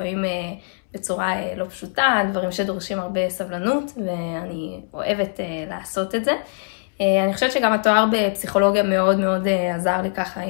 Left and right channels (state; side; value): silent; right; 64 dB below the other